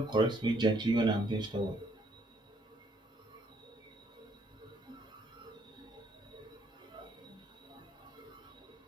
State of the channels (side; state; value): both; normal; correlation 0.68